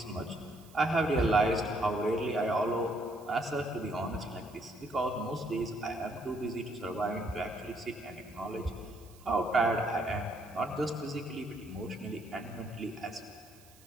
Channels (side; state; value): right; noise; hiss, 25 dB below the sound